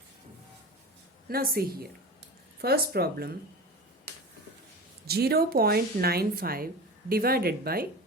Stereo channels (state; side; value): normal; both; correlation 0.30